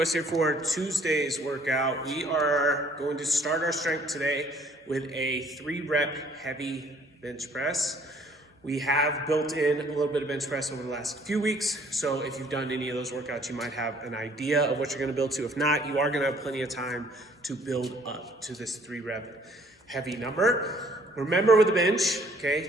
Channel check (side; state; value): both; normal; correlation 0.59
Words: here for Tuesday's workout. We are going to start our strength today with a 3-rep heavy bench press. We have built in a little bit of bench press over the last few weeks, so if you've done any of those workouts, you might have an idea of what you're going to build to. If not, you are going to have plenty of time to build up to this 3-rep heavy number. Remember with the bench,